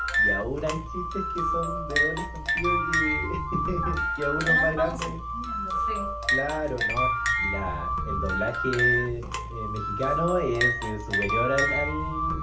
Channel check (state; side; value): identical; both; correlation 1.00